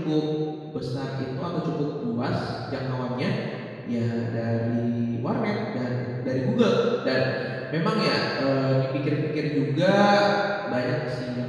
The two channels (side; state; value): both; identical; correlation 1.00